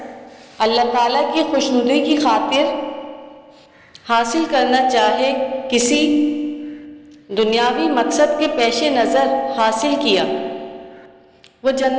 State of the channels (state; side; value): identical; both; correlation 1.00